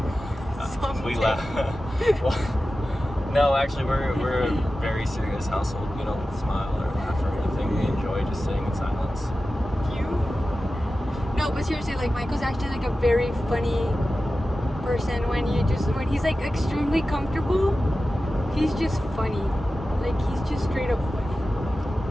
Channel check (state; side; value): normal; both; correlation 0.94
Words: we laugh. Well, no, actually, we're a very serious household. We don't smile or laugh or anything. We enjoy just sitting in silence. No, but seriously, like Michael's actually like a very funny person when he's like extremely comfortable, he's just funny. Like, he's just straight up